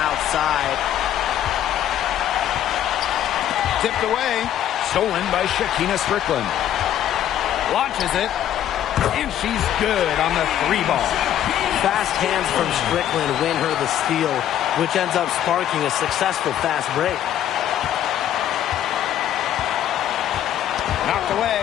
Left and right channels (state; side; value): quieter; right; 11.1 dB